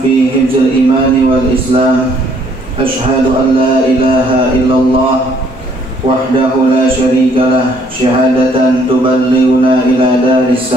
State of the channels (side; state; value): both; normal; correlation 0.64